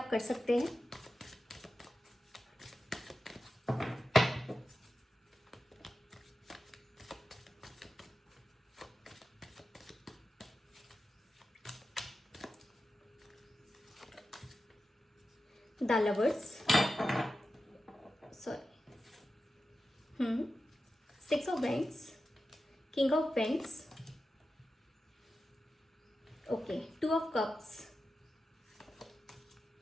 कर सकते हैं। The lovers, sorry, 6 of wands, king of wands, okay, 2 of cups,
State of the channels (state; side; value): normal; both; correlation 0.92